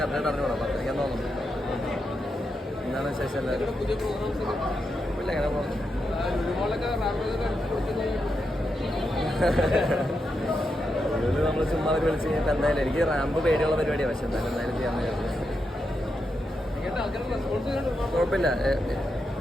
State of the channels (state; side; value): normal; both; correlation 0.85